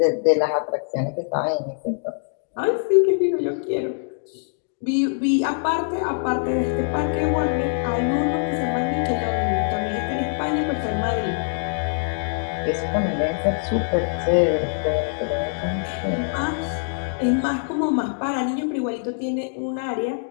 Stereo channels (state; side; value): silent; right; digital silence